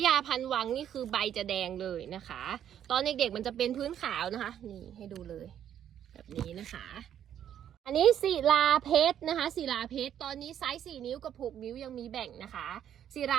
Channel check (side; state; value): left; quieter; 10.0 dB